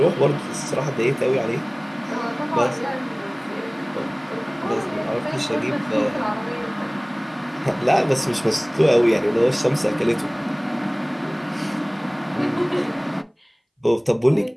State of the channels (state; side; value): identical; both; correlation 1.00